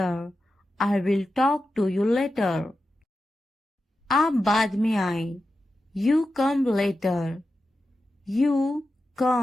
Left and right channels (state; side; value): normal; both; correlation 0.91